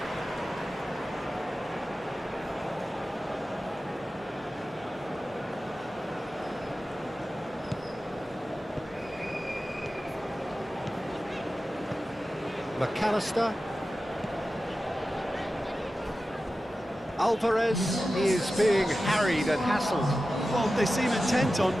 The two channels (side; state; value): both; normal; correlation 0.94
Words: McAllister. Alvarez is being harried and hassled. Well, they seem intent on